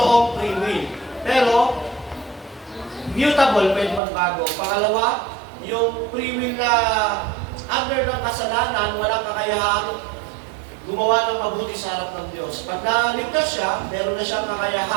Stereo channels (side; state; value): left; drops out; at 4.0 s